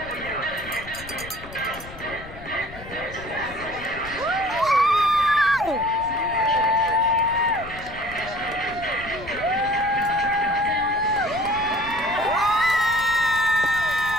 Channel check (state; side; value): noise; left; rumble, 15 dB below the sound